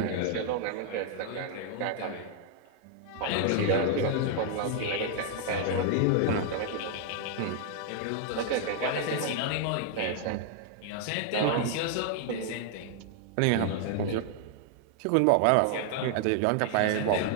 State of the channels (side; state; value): both; different; correlation 0.00